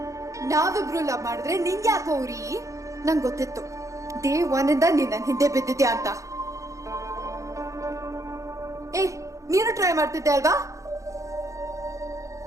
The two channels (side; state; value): left; late; 0.15 ms